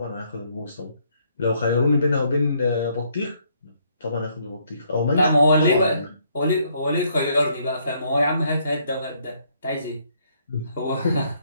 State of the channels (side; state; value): both; inverted; correlation -0.69